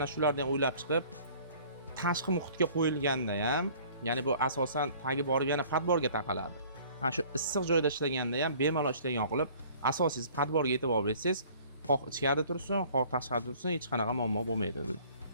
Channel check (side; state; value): both; inverted; correlation -0.52